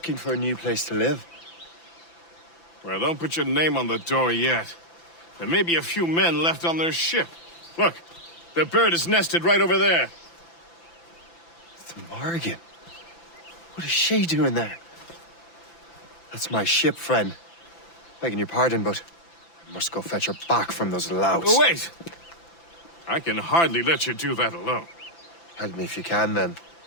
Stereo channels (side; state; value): right; late; 5.9 ms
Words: for a new place to live. Well, don't put your name on the door yet. There may be a few men left on their ship. Look, the bird is nested right over there. The Morrigan. What is she doing there? That's my ship, friend. Begging your pardon, but I must go fetch her back from those louts. Oh, wait! I can hardly let you do that alone. Help me if you can, then.